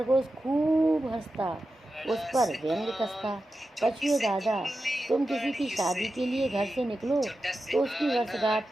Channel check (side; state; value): both; normal; correlation 0.91